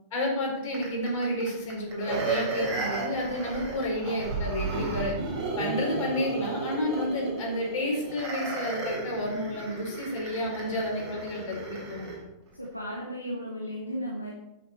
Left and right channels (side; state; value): both; inverted; correlation -0.36